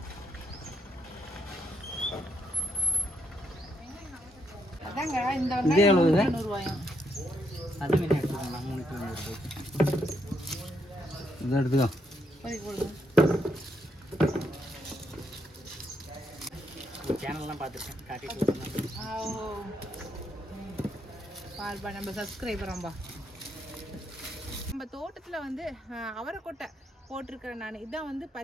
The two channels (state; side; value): normal; both; correlation 0.77